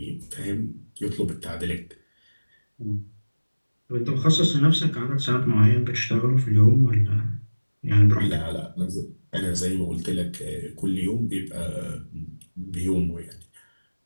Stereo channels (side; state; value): both; inverted; correlation -1.00